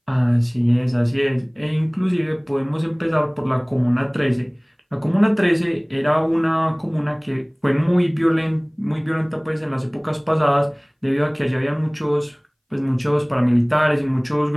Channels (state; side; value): identical; both; correlation 1.00